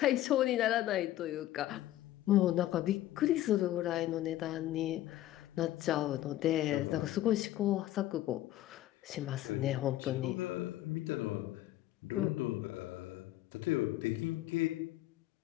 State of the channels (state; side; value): quieter; right; 14.4 dB